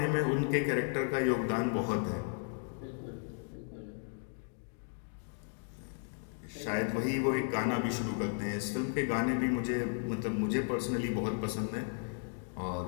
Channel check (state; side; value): silent; right; 55 dB below the other